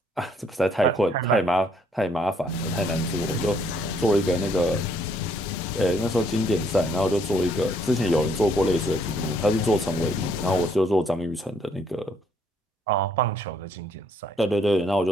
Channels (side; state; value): both; normal; correlation 0.67